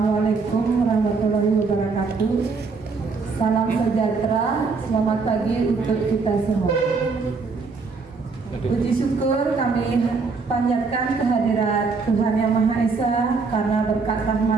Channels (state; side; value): quieter; left; 4.5 dB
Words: warahmatullahi wabarakatuh. Salam sejahtera, selamat pagi untuk kita semua. Puji syukur kami panjatkan kehadirat Tuhan Yang Maha Esa karena berkat